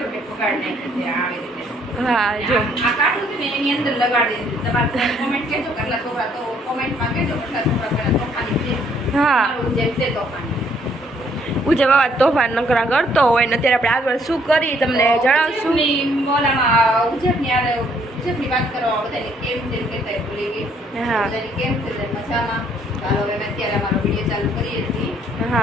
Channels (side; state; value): both; normal; correlation 0.66